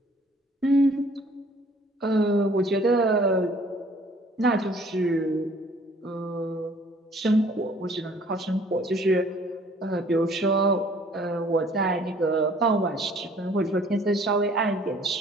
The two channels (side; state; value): both; normal; correlation 0.56